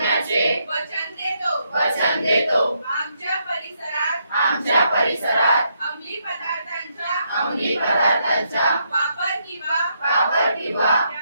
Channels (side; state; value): both; inverted; correlation -0.77